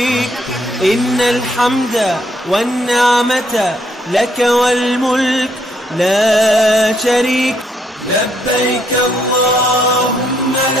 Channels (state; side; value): normal; both; correlation 0.71